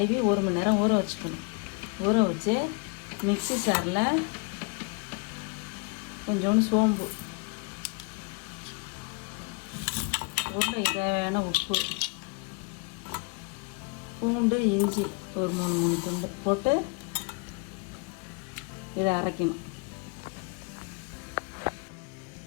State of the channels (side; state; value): right; quieter; 32.4 dB